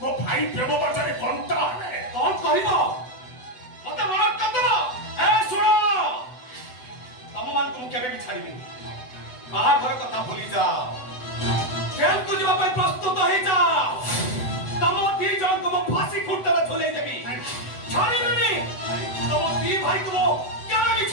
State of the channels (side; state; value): right; late; 8.0 ms